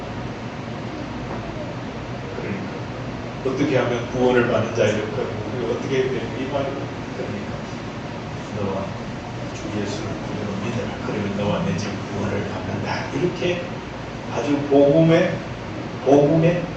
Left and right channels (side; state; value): both; identical; correlation 1.00